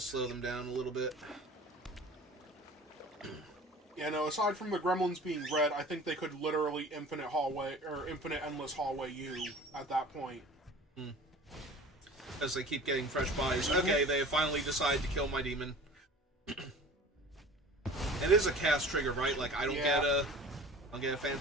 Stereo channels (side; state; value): both; normal; correlation 0.42